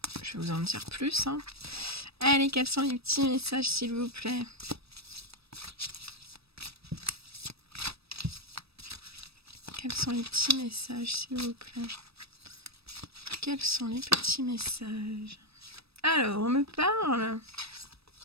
je vais vous en dire plus. Allez, quels sont les petits messages s'il vous plaît? Quels sont les petits messages s'il vous plaît? Quels sont les petits messages? Alors, on me parle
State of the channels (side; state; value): left; late; 0.78 ms